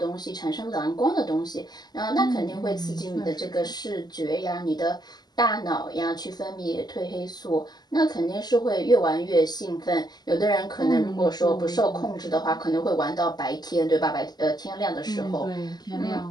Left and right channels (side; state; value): right; late; 0.20 ms